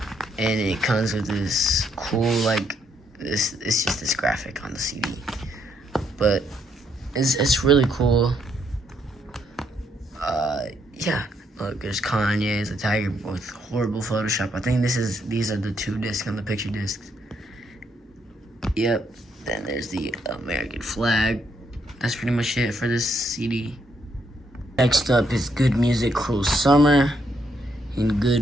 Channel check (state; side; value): normal; both; correlation 0.74